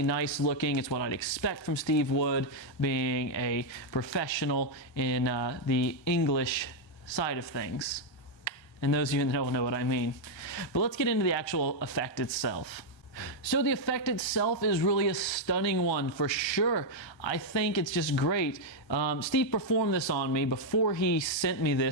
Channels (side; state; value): right; late; 1.3 ms